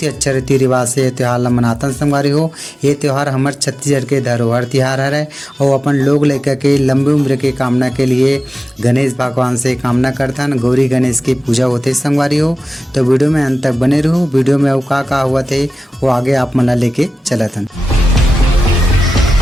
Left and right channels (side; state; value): both; normal; correlation 0.95